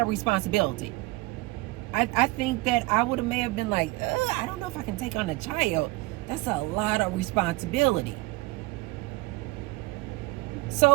of responsibility. I think that I may have been like, I don't know if I can take on a child. That's a lot of responsibility.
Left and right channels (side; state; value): left; quieter; 22.2 dB